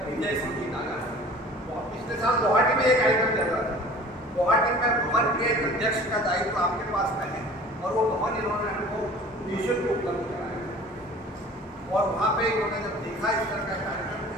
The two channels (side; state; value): both; normal; correlation 0.45